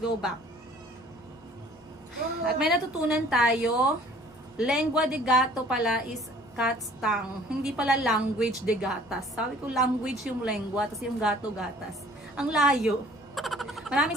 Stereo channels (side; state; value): both; normal; correlation 0.52